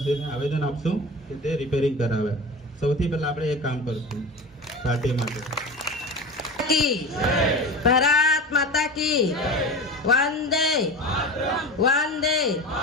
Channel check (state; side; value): normal; both; correlation 0.30